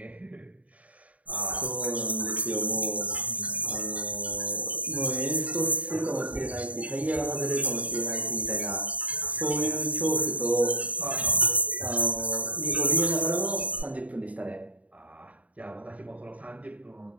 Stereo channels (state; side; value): late; left; 0.069 ms